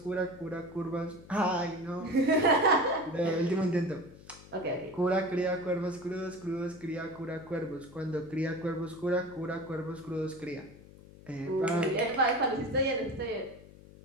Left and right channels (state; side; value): noise; left; hum, 20 dB below the sound